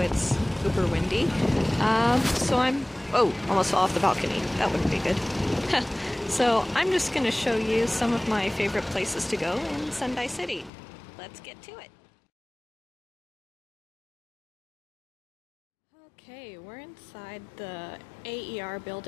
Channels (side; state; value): right; drops out; at 10.7 s